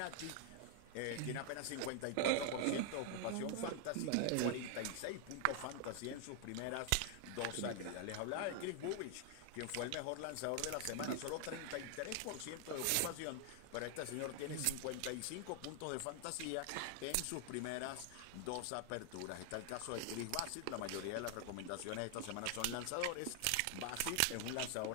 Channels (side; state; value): both; different; correlation 0.00